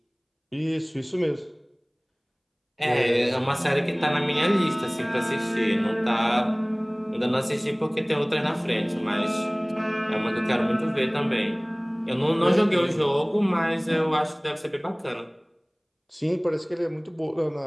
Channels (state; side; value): identical; both; correlation 1.00